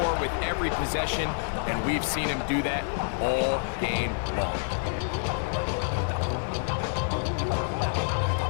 with every possession, and we've seen him do that all game long.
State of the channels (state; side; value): silent; right; digital silence